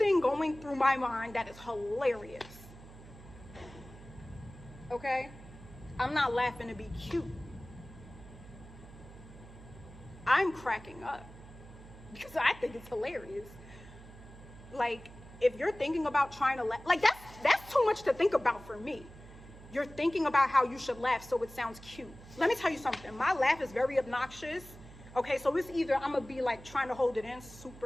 going through my mind that is hilarious. Okay? I'm not laughing to be cute. I'm cracking up because I think it's hilarious. Like, if you're thinking about trying to laugh, like that's too much to think about for me. You're thinking about how you should laugh so it sounds cute. Let me tell you something. My laugh is very obnoxious. Okay, so it's either I'm gonna be like trying to hold it in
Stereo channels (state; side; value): noise; right; hum, 18 dB below the sound